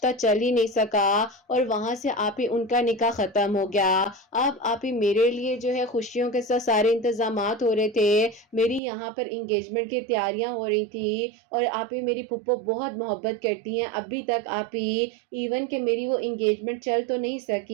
چل ہی نہیں سکا اور وہاں سے آپ ہی ان کا نکاح ختم ہو گیا۔ اب آپ ہی میرے لیے جو ہے خوشیوں کے ساتھ سارے انتظامات ہو رہے تھے، میری یہاں پر انگیجمنٹ کی تیاریاں ہو رہی تھی اور آپ ہی میری پھپھو بہت محبت کرتی ہیں ابھی تک آپ ہی، ایون کہ میری وہ انگیجمنٹ چل تو نہیں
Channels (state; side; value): drops out; left; at 8.8 s